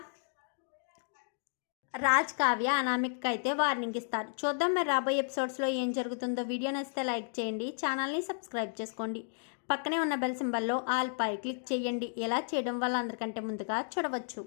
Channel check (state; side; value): silent; right; digital silence